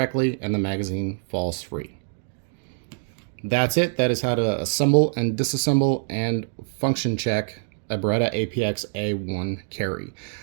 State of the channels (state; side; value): silent; left; digital silence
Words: and the magazine falls free. That's it. That is how to assemble and disassemble and function check a Beretta APX A1 carry.